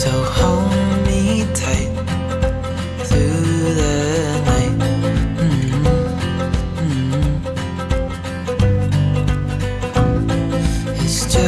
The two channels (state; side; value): identical; both; correlation 1.00